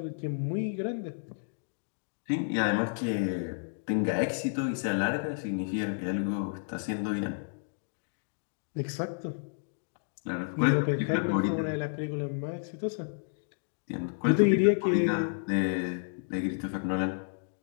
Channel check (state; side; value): silent; right; digital silence